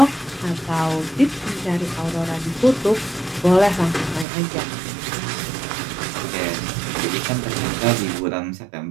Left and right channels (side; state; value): left; drops out; at 4.2 s